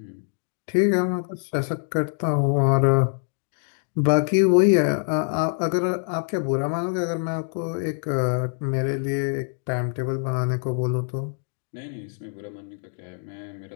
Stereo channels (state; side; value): silent; right; 62 dB below the other